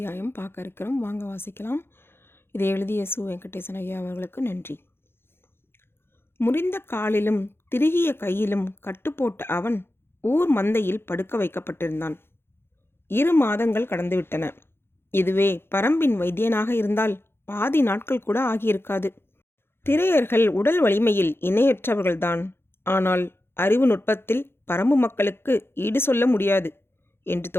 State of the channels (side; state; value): right; late; 0.11 ms